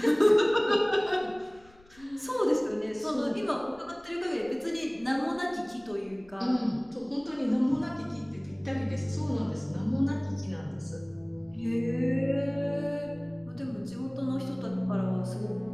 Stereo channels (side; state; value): left; noise; rumble, 27 dB below the sound